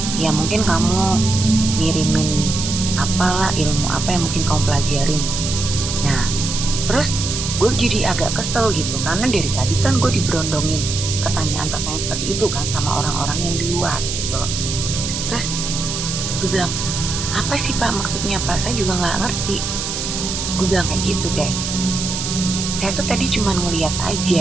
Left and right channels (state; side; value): noise; right; hiss, 4 dB below the sound